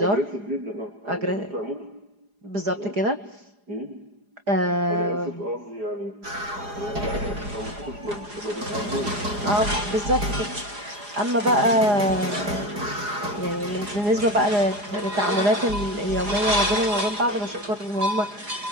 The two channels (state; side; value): late; left; 4.9 ms